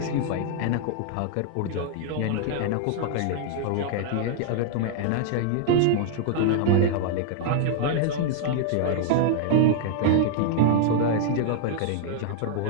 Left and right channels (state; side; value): different; both; correlation 0.00